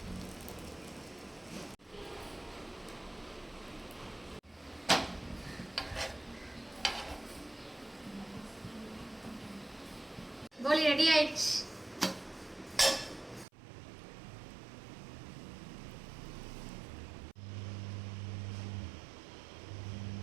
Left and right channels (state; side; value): drops out; left; at 13.5 s